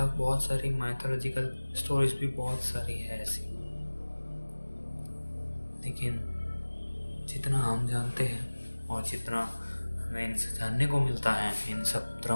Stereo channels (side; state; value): both; inverted; correlation -1.00